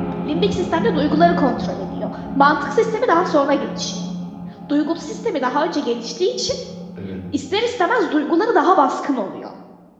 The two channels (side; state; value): both; identical; correlation 1.00